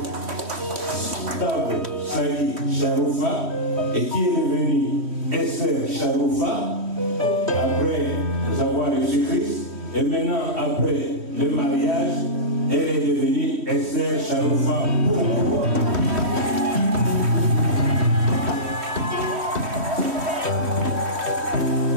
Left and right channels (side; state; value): left; late; 3.1 ms